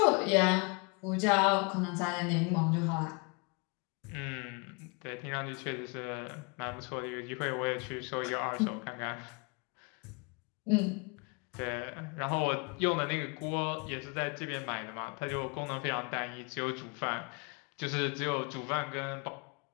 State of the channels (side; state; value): right; quieter; 32.0 dB